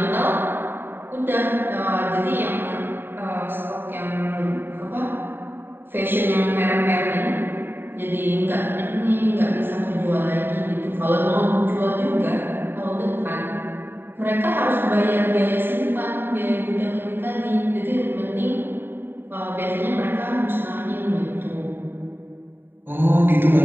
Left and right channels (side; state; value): left; late; 0.098 ms